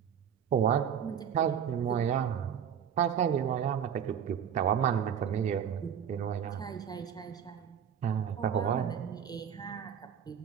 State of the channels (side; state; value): left; quieter; 8.4 dB